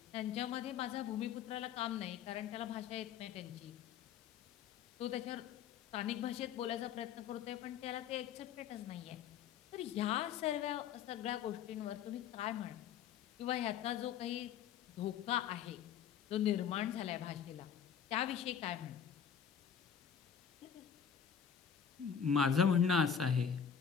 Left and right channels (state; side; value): quieter; right; 7.9 dB